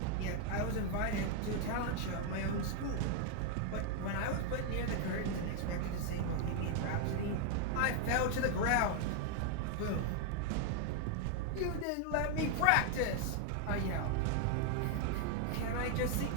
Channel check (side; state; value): both; different; correlation 0.00